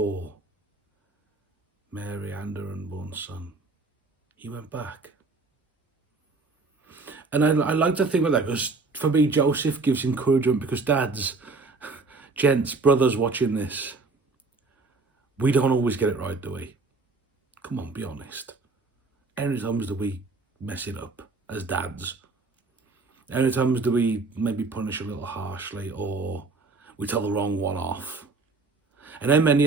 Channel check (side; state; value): left; quieter; 3.8 dB